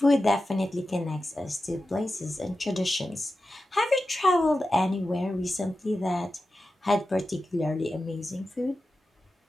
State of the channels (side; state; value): both; normal; correlation 0.93